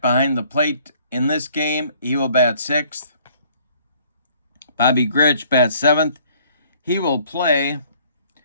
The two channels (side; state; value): both; inverted; correlation -0.59